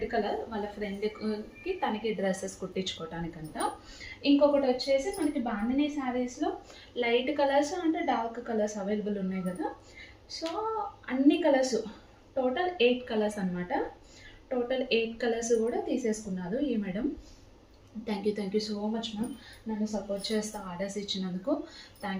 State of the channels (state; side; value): identical; both; correlation 1.00